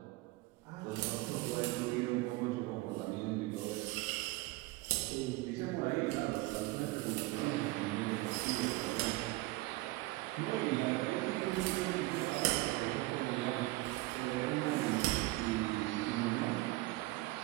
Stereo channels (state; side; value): quieter; left; 20.4 dB